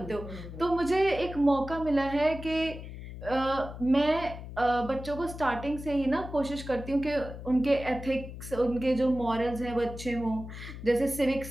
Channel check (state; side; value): noise; left; hum, 11 dB below the sound